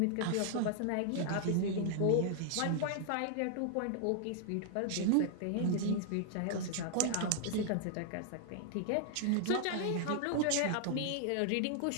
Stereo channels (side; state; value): both; different; correlation 0.00